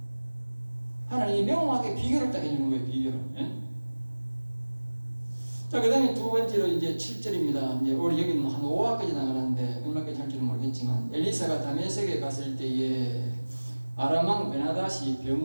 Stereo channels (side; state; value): both; inverted; correlation -1.00